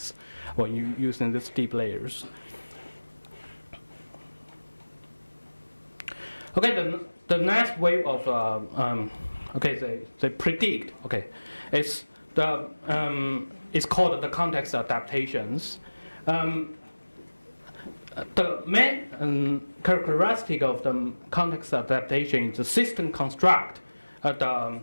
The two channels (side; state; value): both; inverted; correlation -1.00